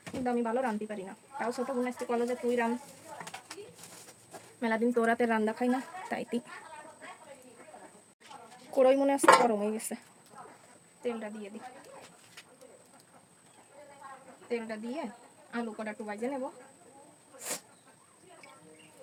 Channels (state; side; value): identical; both; correlation 1.00